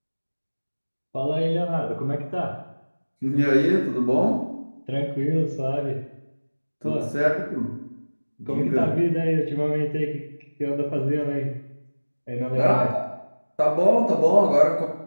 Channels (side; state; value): both; inverted; correlation -1.00